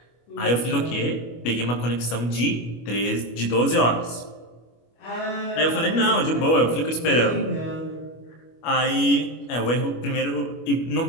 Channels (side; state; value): right; late; 25 ms